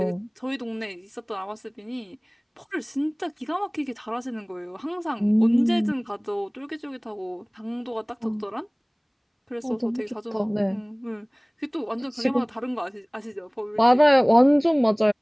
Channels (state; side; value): identical; both; correlation 1.00